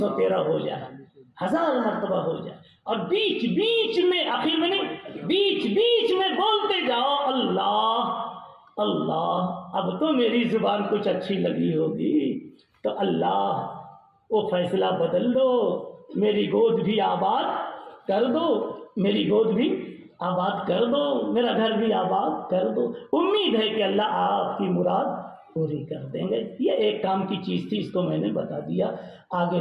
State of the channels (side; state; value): both; identical; correlation 1.00